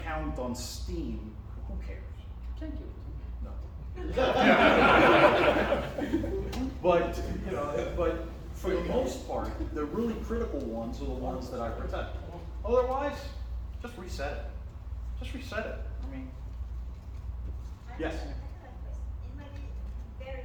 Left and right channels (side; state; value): both; identical; correlation 1.00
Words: on Steam, who cares? Thank you. No. But, you know, but for the most part, the really critical ones are the ones that I protect. Otherwise, just reset it. Just reset it. I mean, yes. I have a question. It might be very